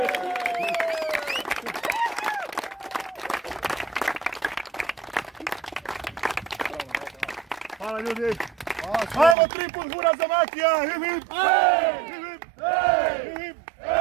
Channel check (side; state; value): left; drops out; at 9.3 s